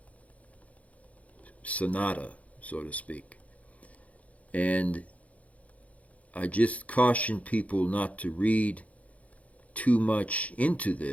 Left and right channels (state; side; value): late; right; 0.068 ms